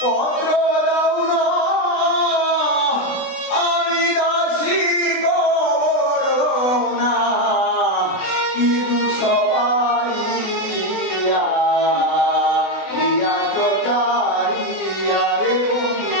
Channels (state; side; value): late; right; 20 ms